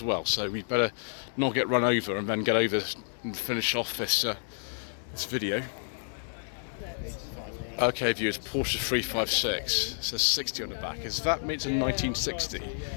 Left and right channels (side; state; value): right; silent; digital silence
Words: well, so we'd better not get run over and then get over and finish off this this video. Okay, viewers, Porsche 356. It says 60 on the back. Does that mean it's a 1960,